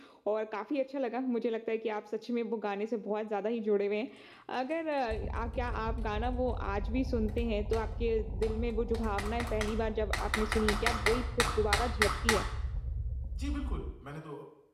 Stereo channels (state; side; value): identical; both; correlation 1.00